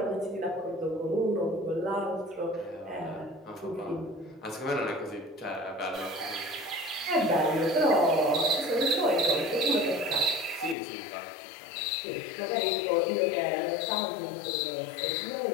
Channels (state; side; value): drops out; right; at 10.8 s